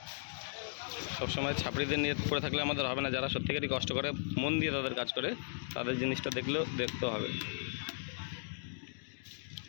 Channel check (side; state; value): right; silent; digital silence